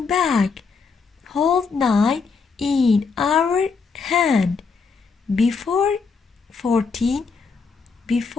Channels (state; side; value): quieter; right; 5.0 dB